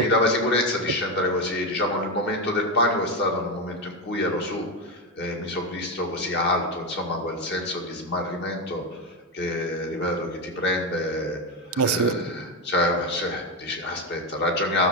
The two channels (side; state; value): both; normal; correlation 0.11